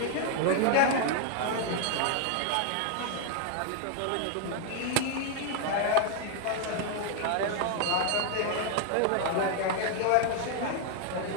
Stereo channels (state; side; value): different; both; correlation 0.00